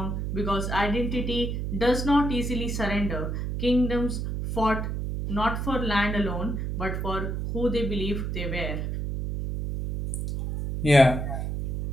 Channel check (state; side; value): noise; right; hum, 2 dB below the sound